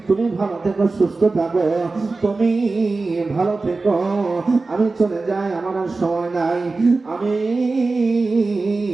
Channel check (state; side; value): quieter; left; 3.7 dB